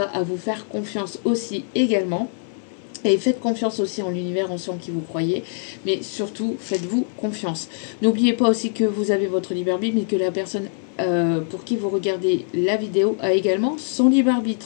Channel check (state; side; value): silent; right; 64 dB below the other